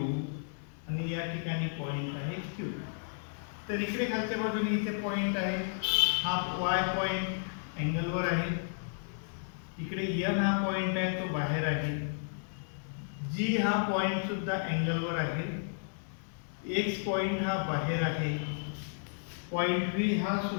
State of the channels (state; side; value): silent; right; digital silence